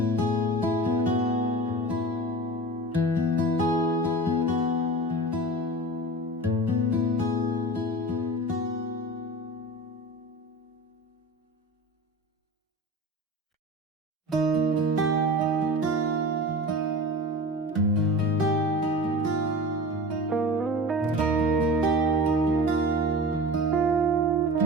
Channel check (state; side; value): normal; both; correlation 0.33